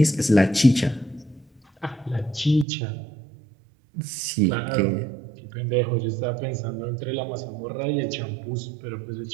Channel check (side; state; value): left; drops out; at 2.7 s